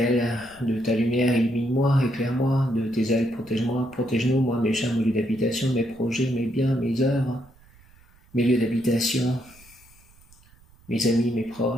de ta lumière, illumine-moi, éclaire-moi, de tes ailes, protège-moi, protège-nous, moi, mes chats, mon lieu d'habitation, mes projets, mes biens, mes œuvres, mes lieux d'habitation, mes amis, mes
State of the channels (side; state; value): right; noise; rumble, 27 dB below the sound